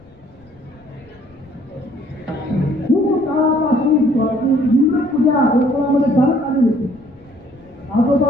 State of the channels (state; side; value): noise; left; rumble, 29 dB below the sound